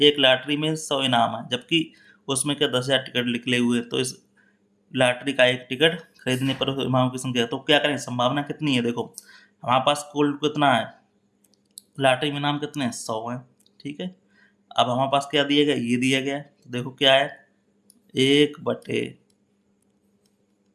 एक लॉटरी में 100 इनाम है, जबकि उसमें क्या 10,000 टिकट निकले हुए, तो इस लॉटरी का एक टिकट खरीदने पर इनाम की संख्या, तो क्या करें, संभावना कितनी है। देखो हमारे पास कुल कितना है, लॉटरी में इनाम कितने हैं, 100 है, ठीक है। अब हमारे पास क्या दिया गया, ये दिया गया है, तो देखो क्या है, एक बटे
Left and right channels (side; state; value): both; identical; correlation 1.00